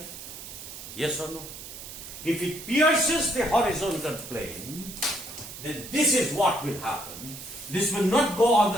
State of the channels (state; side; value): noise; right; hiss, 12 dB below the sound